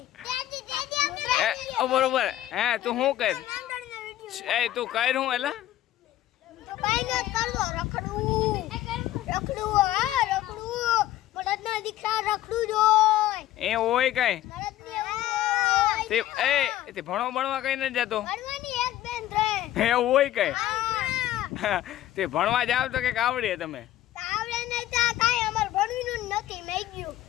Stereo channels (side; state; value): right; quieter; 13.9 dB